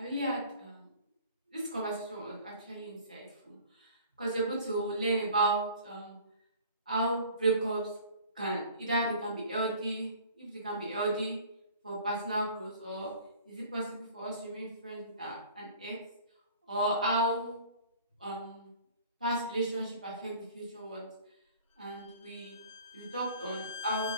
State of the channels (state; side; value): inverted; both; correlation -0.48